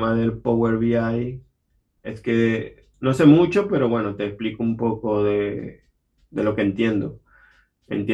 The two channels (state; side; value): identical; both; correlation 1.00